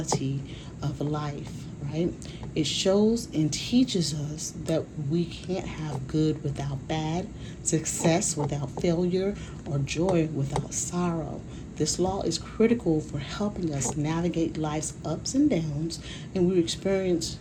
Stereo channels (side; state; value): both; identical; correlation 1.00